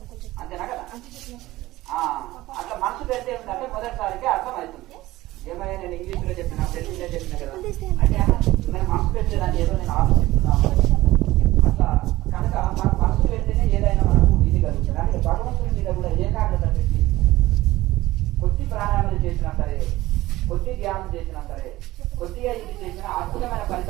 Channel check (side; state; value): left; quieter; 17.3 dB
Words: అంతేనా కదా? అట్లా మనసు పెడితే ఏంటంటే మొదటిసారికి అర్థమవుతుంది. ఏమైనా నేను ఇంగ్లీష్ లో చెప్పినా, తెలుగులో చెప్పినా కదా అంటే నేను మనసు పెట్టలేదంటే ఏదో నేను ఆలోచిస్తున్నాను అట్లా. కనుక మన మనసు పెడితేనే ఏదైనా మనకు ఇది కలుగుతుంది. అంటే భగవంతుని మీద కూడా ఏకాగ్రత పెట్టి కొద్ది ప్రాణాయామాలు చేసినా సరే, కొద్ది ధ్యానం చేసినా సరే, కొద్దిగా ఇది చేసినా అద్భుతమైన